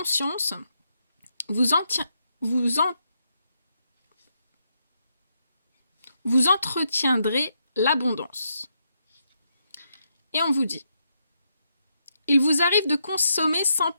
vous entretiendrez l'abondance. Et on vous dit il vous arrive de consommer sans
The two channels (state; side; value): inverted; both; correlation -0.80